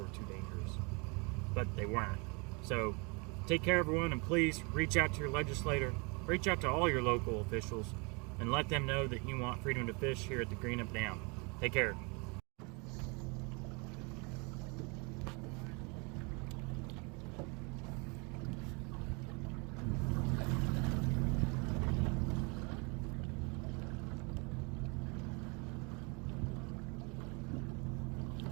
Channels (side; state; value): left; quieter; 30.9 dB